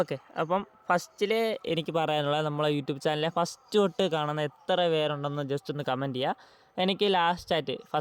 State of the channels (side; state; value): both; identical; correlation 1.00